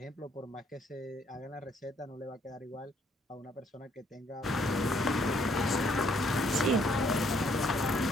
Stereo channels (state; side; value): normal; both; correlation 0.67